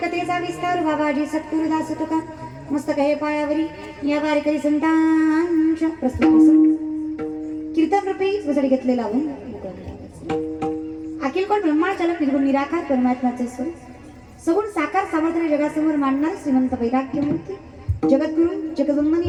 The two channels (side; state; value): both; identical; correlation 1.00